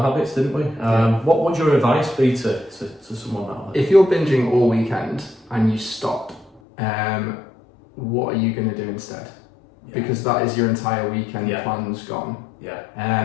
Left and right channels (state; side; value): drops out; right; at 6.6 s